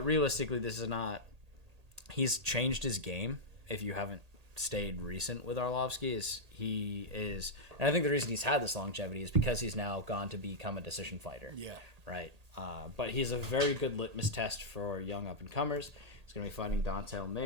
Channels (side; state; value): left; late; 1.8 ms